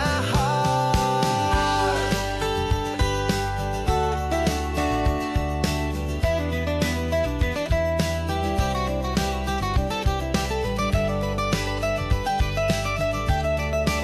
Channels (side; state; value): both; identical; correlation 1.00